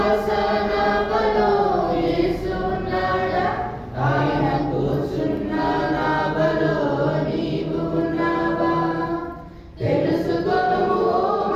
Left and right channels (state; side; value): identical; both; correlation 1.00